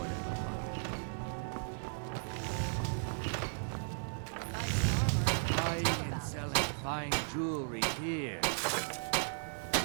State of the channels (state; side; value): silent; left; 54 dB below the other